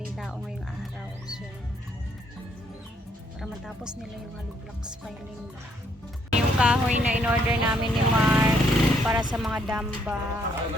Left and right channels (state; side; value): normal; both; correlation 0.70